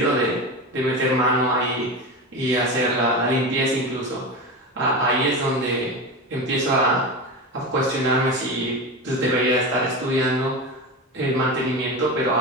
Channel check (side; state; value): both; normal; correlation 0.23